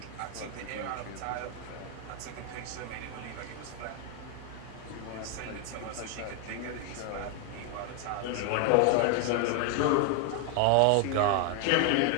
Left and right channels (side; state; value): both; different; correlation 0.01